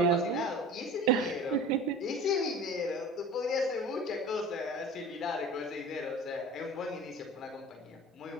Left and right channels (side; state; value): both; normal; correlation 0.39